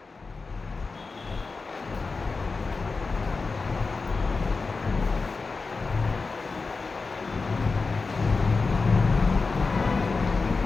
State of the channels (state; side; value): quieter; right; 4.2 dB